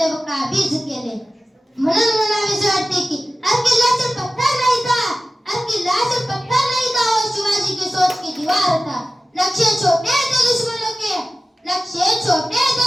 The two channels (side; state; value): both; normal; correlation 0.95